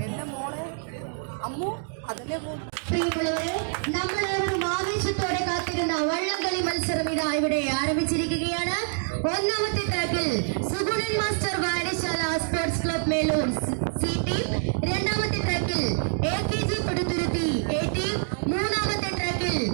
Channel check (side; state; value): left; silent; 61 dB below the other